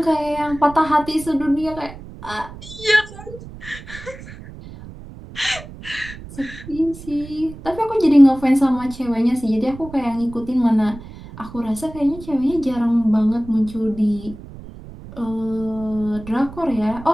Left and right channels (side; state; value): right; noise; rumble, 15 dB below the sound